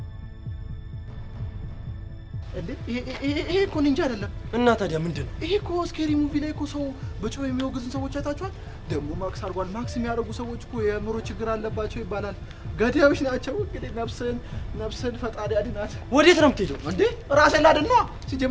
ይሄ እኮ ኒንጃ አይደለም እና ታዲያ ምንድነው ይሄ እኮ ስኬሪ ሙቪ ላይ እኮ ሰው በጮህ የሚወግዙን ሰዎች አይታችኋል ደግሞ ማክስ አርጓል ማክስ የሚያደርጉ ሰዎች እኮ የምሮ ችግር አለባቸው ይባላል ገዳዮች ናቸው እንግዲህ ነፍስን ፈጣሪ አድናት ወዴት ነው የምትሄደው እንዴ ራሴን ላድን ነው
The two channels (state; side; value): identical; both; correlation 1.00